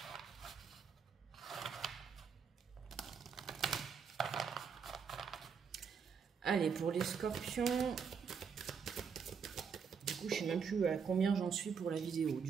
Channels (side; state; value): left; quieter; 6.3 dB